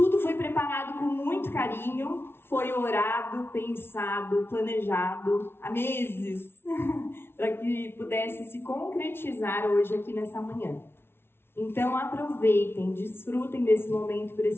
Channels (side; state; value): right; late; 0.12 ms